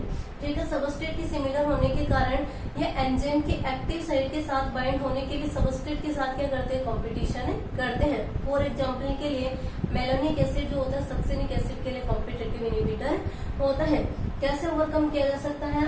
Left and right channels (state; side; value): identical; both; correlation 1.00